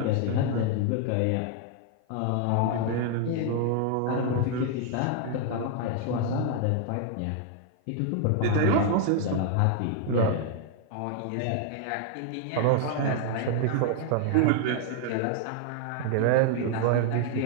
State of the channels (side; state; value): both; different; correlation 0.00